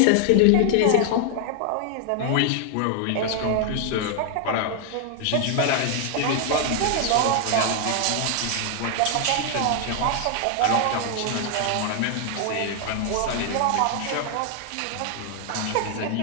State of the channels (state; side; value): different; both; correlation 0.00